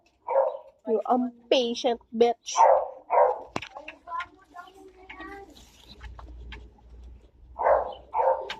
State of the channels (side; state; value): both; identical; correlation 1.00